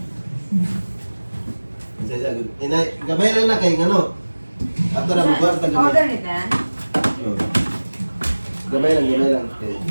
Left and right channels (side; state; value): both; inverted; correlation -1.00